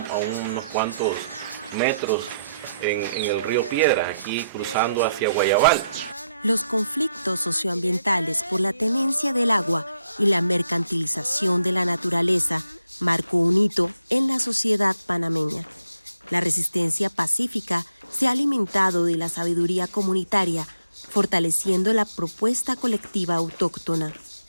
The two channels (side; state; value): both; inverted; correlation -0.79